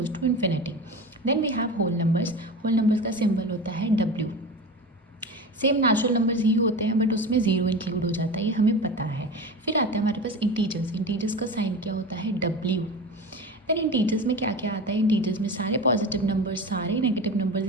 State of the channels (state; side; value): normal; both; correlation 0.29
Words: to infinity. Then we have whole numbers. Whole numbers का सिंबल होता है डब्ल्यू। सेम नेचुरल नंबर्स ही होते हैं बट उसमें ज़ीरो इंक्लूड हो जाता है, ये हमें पता है। फिर आता है हमारे पास इंटीजर्स। इंटीजर्स का साइन क्या होता है? डब्ल्यू। देन इंटीजर्स में क्या क्या आता है? इंटीजर्स में सारे पॉजिटिव नंबर्स, सारे नेगेटिव नंबर्स